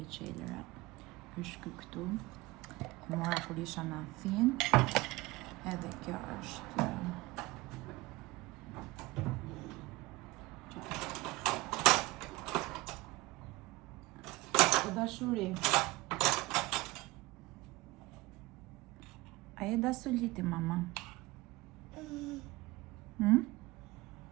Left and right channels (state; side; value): quieter; left; 21.0 dB